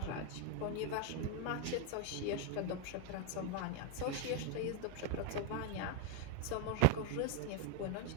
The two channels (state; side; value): different; both; correlation 0.01